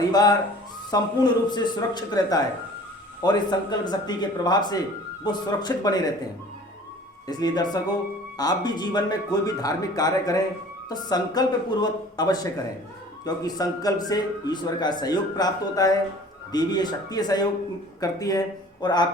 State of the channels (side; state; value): both; normal; correlation 0.47